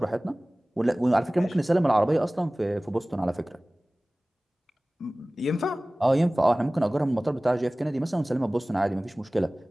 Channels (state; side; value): normal; both; correlation 0.98